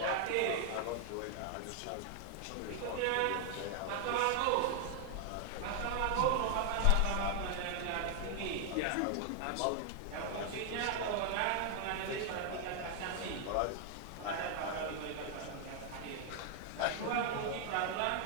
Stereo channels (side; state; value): both; different; correlation 0.00